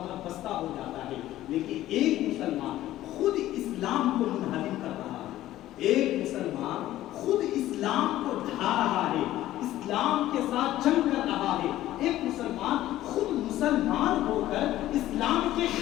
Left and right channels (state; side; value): quieter; right; 14.4 dB